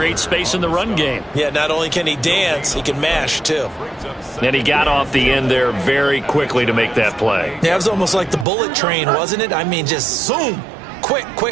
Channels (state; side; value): drops out; left; at 8.5 s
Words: space in the run game. Yeah, not only can he dance, he can mash, too. And he got off the end there very quickly to make that play. Yeah, it was almost like the bullet train, wasn't it? I mean, just zoom. Quick,